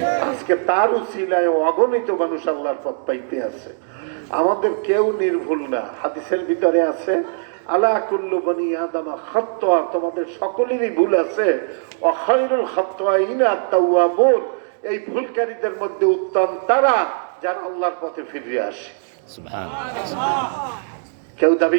আজকে তার উসিলায় অগণিত মানুষ আল্লাহর পথ পাইতে আছে। আমাদের কেউ নির্ভুল না। হাদিসের ভিতরে আছে আলা কুল্লু বনি আদম খাত্তা, তোমাদের সকলেরই ভুল আছে, ওয়া খায়রুল খাত্তাইনা আত-তাওয়াবুন, এই ভুলকারীদের মধ্যে উত্তম তারা যারা আল্লাহর পথে ফিরে আসে। সুবহানাল্লাহ। কেউ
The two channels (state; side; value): silent; left; digital silence